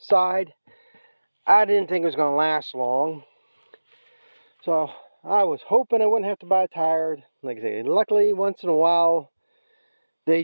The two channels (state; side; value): inverted; both; correlation -1.00